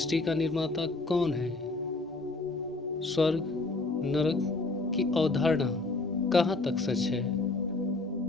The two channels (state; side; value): quieter; right; 3.2 dB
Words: का निर्माता कौन है? स्वर्ग नरक की अवधारणा कहाँ तक सच है?